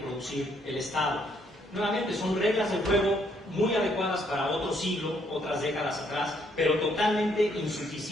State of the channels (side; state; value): both; normal; correlation 0.70